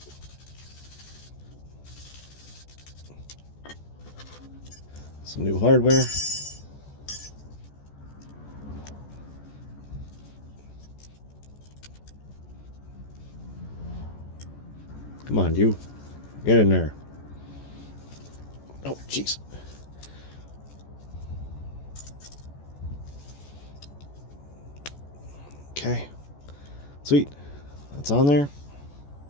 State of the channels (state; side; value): late; right; 14 ms